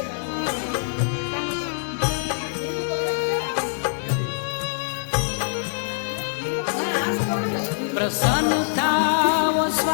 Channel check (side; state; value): right; silent; digital silence